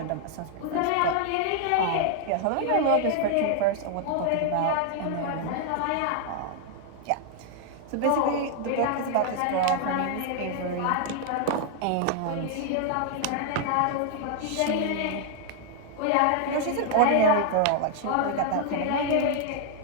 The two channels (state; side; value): different; both; correlation 0.00